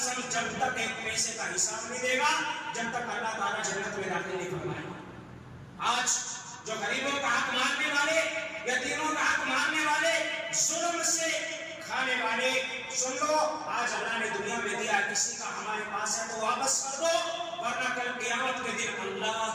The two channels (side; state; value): both; identical; correlation 1.00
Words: جب تک ایک پیسے کا حساب نہیں دے گا، جب تک اللہ تعالیٰ جنت میں داخل نہیں فرمائے گا۔ آج جو غریبوں کا حق ماننے والے، یتیموں کا حق ماننے والے، ظلم سے کھانے والے، سن لو آج اللہ نے دنیا میں دیا، کسی کا ہمارے پاس ہے تو واپس کر دو، ورنہ کل قیامت کے دن اللہ